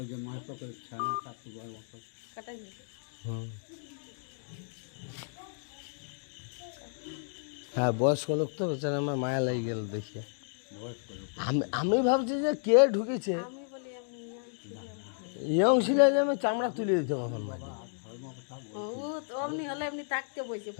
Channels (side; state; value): right; silent; digital silence